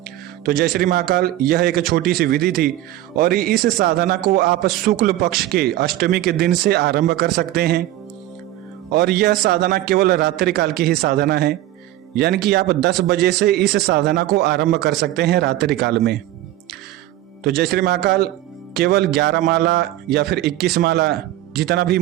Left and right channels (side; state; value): left; quieter; 14.6 dB